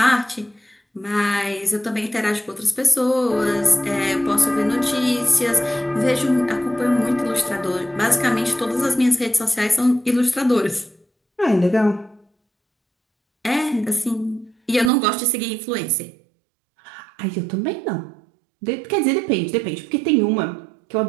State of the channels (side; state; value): left; drops out; at 14.9 s